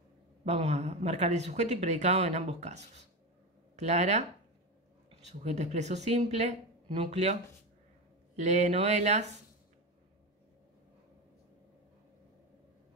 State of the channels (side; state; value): both; normal; correlation 0.19